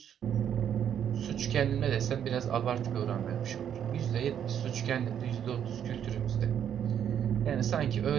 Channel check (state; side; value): quieter; left; 9.2 dB